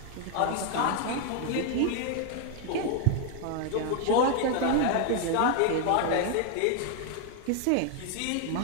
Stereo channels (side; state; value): both; different; correlation 0.00